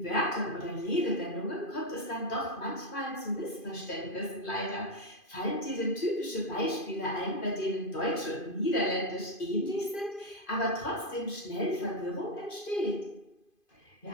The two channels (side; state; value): right; late; 2.5 ms